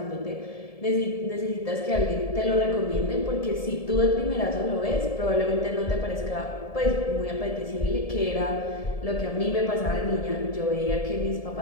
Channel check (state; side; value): late; right; 1.7 ms